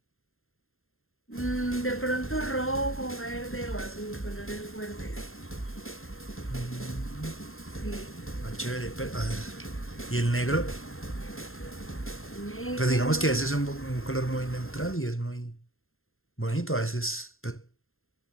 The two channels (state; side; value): late; right; 0.61 ms